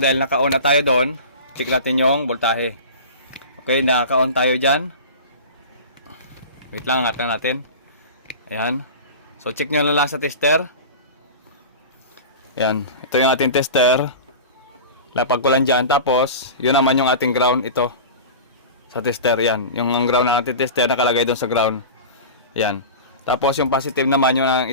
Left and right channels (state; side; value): inverted; both; correlation -0.32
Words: dahil naka-on na tayo doon. Check natin yung voltahe. Okay, naka-on tayo dyan. Wait lang, angat lang natin. Ayan. So, check nyo na lang sa tester. Ayan. Ito yung ating tester. Lapag ko lang dyan. Tapos, yun naman yung ating ground. Ito. Sa tester, yan. Yung ground ng ating tester nakalagay doon sa ground. Yan. Tapos yung positive naman yung